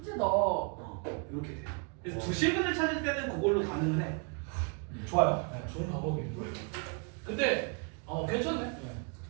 이렇게 돼. 그래서 두 실근을 찾을 때는 그걸로 가능은 해. 좋아요. 네, 좋은 방법이에요. 근데 괜찮네. 네.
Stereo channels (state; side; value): quieter; left; 36.6 dB